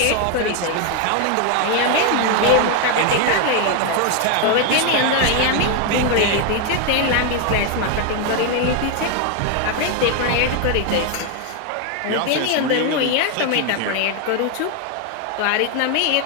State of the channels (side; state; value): both; different; correlation 0.01